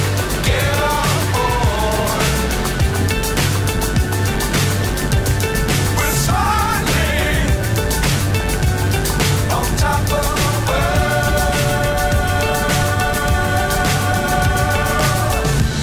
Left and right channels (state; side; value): identical; both; correlation 1.00